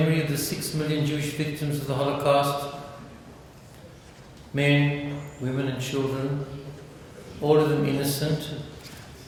of the 6 million Jewish victims of the Holocaust, men, women and children, all of them innocent,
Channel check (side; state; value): both; identical; correlation 1.00